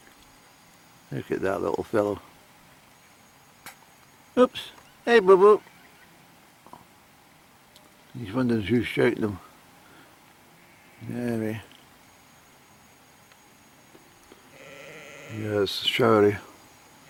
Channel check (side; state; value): both; identical; correlation 1.00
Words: Look at that little fellow. Oops. Hey, boo boo. He's wondering who's shouting him. Anyway. Yes, showery.